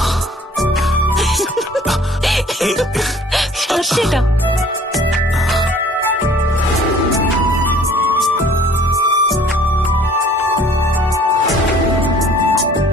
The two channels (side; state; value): both; normal; correlation 0.54